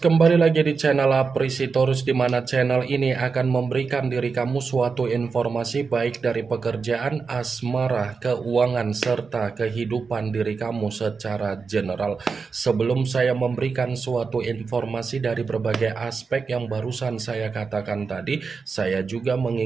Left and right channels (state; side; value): quieter; left; 5.0 dB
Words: lagi di channel Aprisitorus, di mana channel ini akan memberikan diri kamu suatu informasi baik dari pekerjaan, asmara, keuangan, serta kehidupan diri kamu secara general. Sebelum saya memberikan suatu informasi dari berbagai aspek yang barusan saya katakan tadi, saya juga